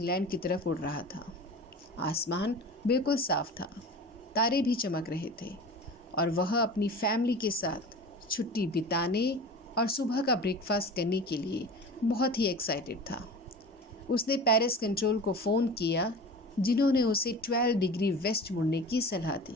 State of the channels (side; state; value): both; normal; correlation 0.35